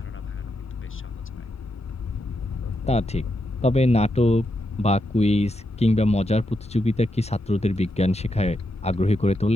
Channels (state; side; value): normal; both; correlation 0.84